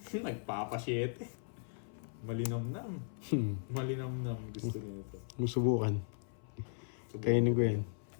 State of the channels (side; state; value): right; silent; 53 dB below the other